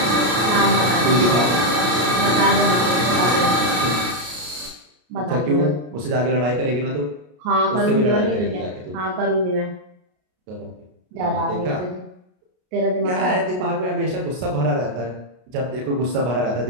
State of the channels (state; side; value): late; left; 33 ms